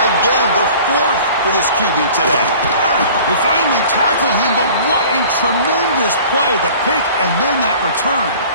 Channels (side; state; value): both; inverted; correlation -0.46